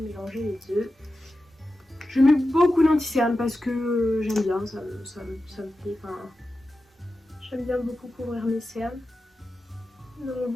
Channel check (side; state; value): both; normal; correlation 0.92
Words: mélanger les deux. Je mets beaucoup d'anti-cerne parce que j'aime bien, ça me plaît. Enfin, j'aime bien beaucoup couvrir mes cernes. Donc